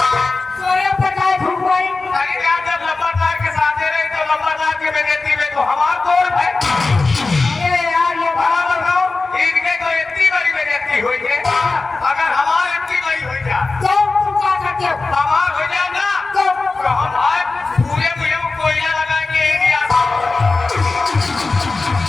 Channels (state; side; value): quieter; right; 3.7 dB